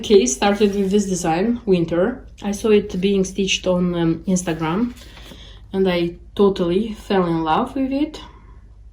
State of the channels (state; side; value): identical; both; correlation 1.00